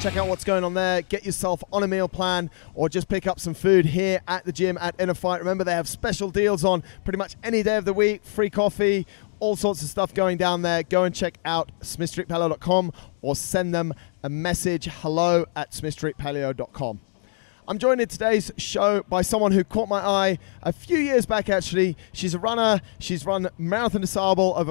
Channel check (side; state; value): right; silent; digital silence